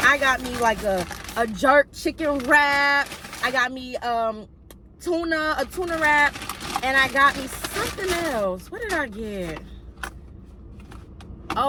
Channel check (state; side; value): identical; both; correlation 1.00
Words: got me like a jerk chicken wrap. I got me a tuna wrap. And I got me something else. What did I get?